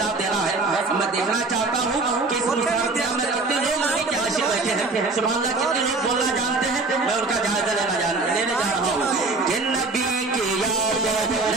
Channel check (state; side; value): quieter; left; 3.6 dB